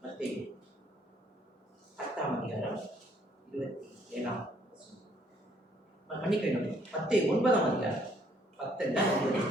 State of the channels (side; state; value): both; normal; correlation 0.65